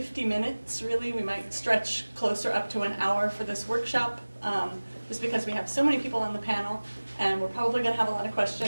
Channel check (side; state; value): both; inverted; correlation -1.00